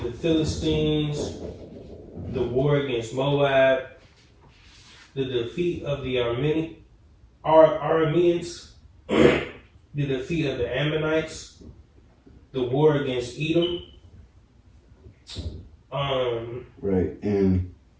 the Philistines, the war against Moab, the defeat of the Arameans, the defeat of the Ammonites, the war against Edom. Right, and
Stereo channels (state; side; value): identical; both; correlation 1.00